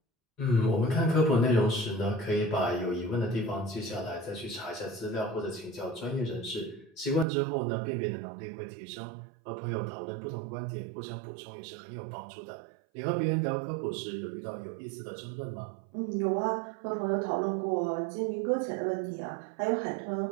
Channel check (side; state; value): left; drops out; at 7.2 s